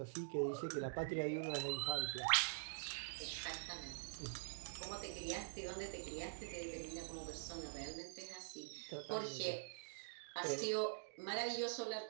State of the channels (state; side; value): silent; left; digital silence